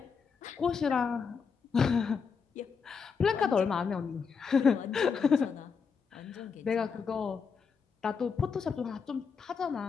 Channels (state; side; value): quieter; right; 5.8 dB